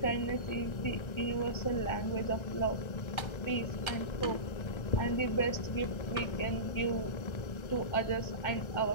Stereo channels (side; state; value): right; late; 1.3 ms